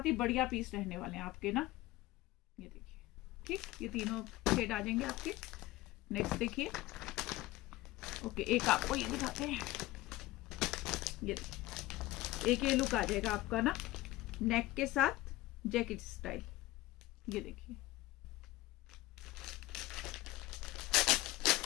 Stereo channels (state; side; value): quieter; right; 17.6 dB